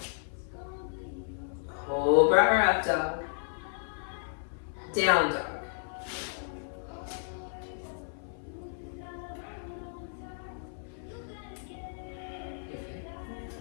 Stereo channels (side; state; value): right; silent; 56 dB below the other